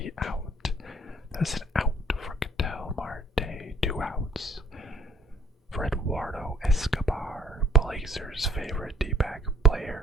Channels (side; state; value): both; normal; correlation 0.58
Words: out. That's an out for Ketel Marte. 2 outs. For Eduardo Escobar, Blazers' favorite D-back